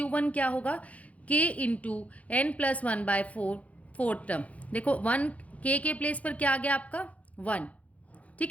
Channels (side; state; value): right; late; 0.067 ms